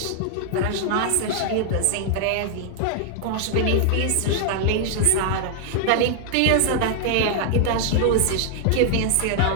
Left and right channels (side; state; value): both; different; correlation 0.00